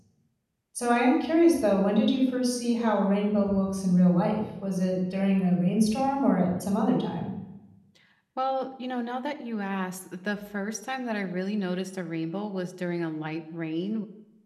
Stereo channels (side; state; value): both; identical; correlation 1.00